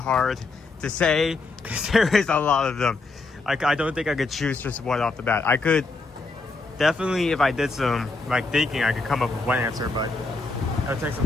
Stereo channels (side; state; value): right; quieter; 3.6 dB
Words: to say because there is a lot of them. I don't think I could choose just one off the bat. I could definitely, if I did some thinking, I could come up with one answer, but it would take some